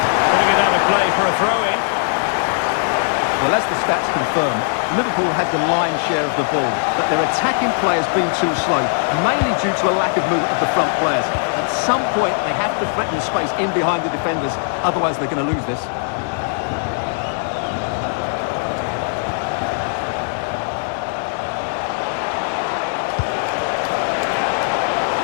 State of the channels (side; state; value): right; silent; digital silence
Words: Putting it out of play for a throw-in. Well, as the stats confirm, Liverpool had the lion's share of the ball, but their attacking players been too slow, mainly due to a lack of movement of the front players. At some point, they have to threaten the space in behind the defenders, otherwise they're going to lose this.